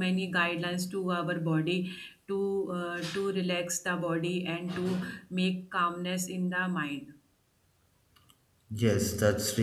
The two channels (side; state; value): both; identical; correlation 1.00